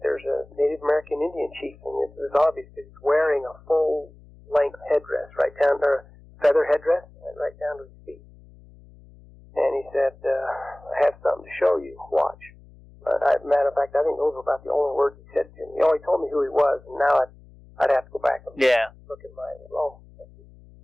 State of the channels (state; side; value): noise; left; hum, 24 dB below the sound